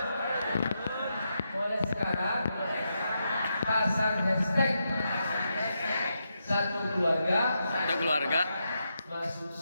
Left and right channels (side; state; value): both; inverted; correlation -0.84